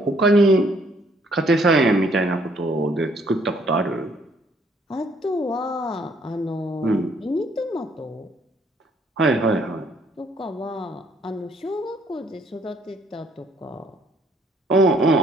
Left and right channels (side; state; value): both; normal; correlation 0.65